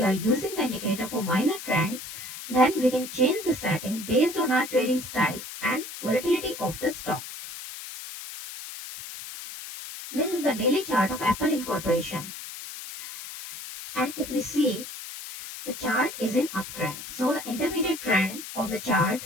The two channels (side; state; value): left; noise; hiss, 10 dB below the sound